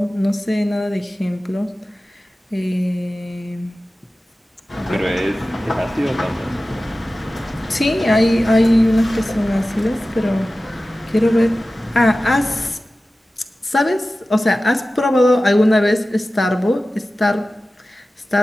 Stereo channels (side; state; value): both; normal; correlation 0.96